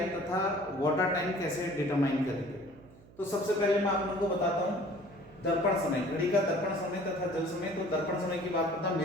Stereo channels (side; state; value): right; noise; hum, 24 dB below the sound